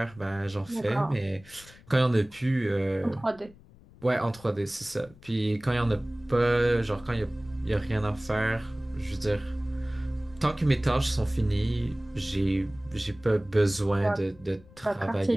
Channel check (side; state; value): left; noise; rumble, 24 dB below the sound